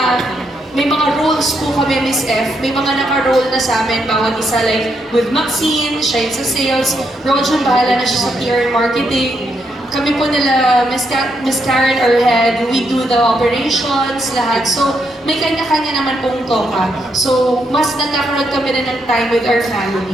may mga roles po kami, Miss F. May mga naka-role na sa amin, bawat isa. Like, with Maxine, siya yung sa sales. Rojan, bahala na siya sa PR and marketing. Kami po nila, Miss Karen, our head, we do the operations, lahat. So, may kanya-kanya naman pong toka. So, mas nagkakaroon kami na ng time with our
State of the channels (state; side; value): normal; both; correlation 0.78